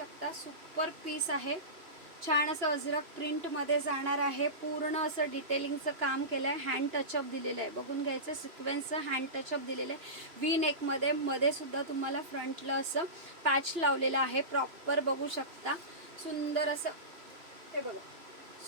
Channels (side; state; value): left; late; 2.9 ms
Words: सुपर पीस आहे। छान असं अजरक प्रिंटमध्ये जाणार आहे। पूर्ण असं डिटेलिंगचं काम केलं आहे। हँड टचअप दिलेलं आहे, बघून घ्यायचं सिक्वेन्सचं हँड टचअप दिलेलं आहे। वी नेकमध्ये मध्ये सुद्धा तुम्हाला फ्रंटला असं पॅच लावलेलं आहे प्रॉपर बघू शकता। सुंदर असं हे बघा